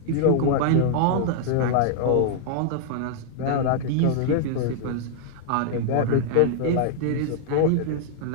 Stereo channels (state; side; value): different; both; correlation -0.01